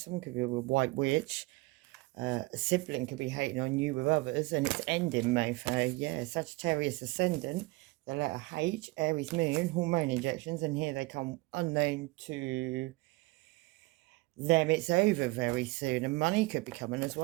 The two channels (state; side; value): quieter; left; 23.0 dB